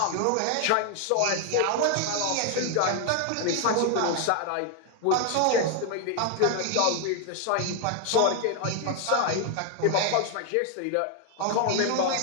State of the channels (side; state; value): both; different; correlation 0.00